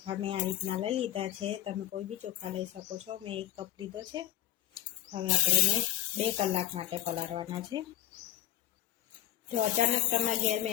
મેં આ રીતના લઈ લીધા છે। તમે કોઈ બી ચોખા લઈ શકો છો। મેં 1 કપ લીધો છે। હવે આપણે એને 2 કલાક માટે પલાળવાના છે। જો અચાનક તમારા ઘેર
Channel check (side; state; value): right; quieter; 13.1 dB